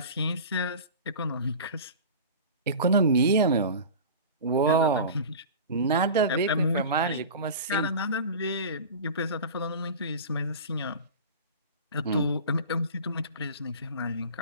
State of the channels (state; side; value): inverted; both; correlation -0.34